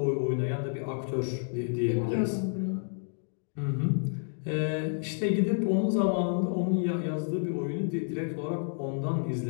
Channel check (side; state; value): right; silent; 58 dB below the other